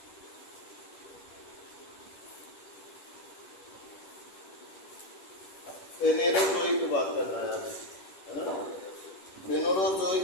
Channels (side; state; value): right; late; 10 ms